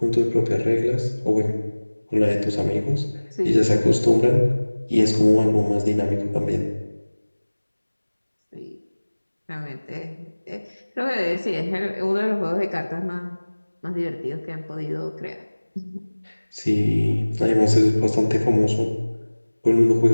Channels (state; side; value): inverted; both; correlation -1.00